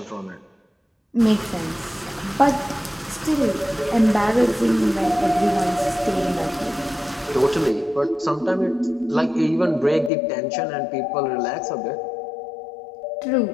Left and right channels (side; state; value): right; drops out; at 10.1 s